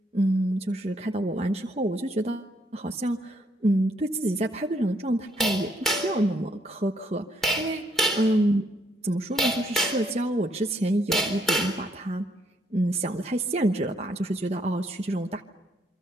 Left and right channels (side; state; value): both; normal; correlation 0.72